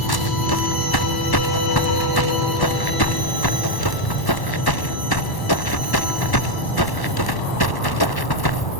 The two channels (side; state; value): right; late; 1.1 ms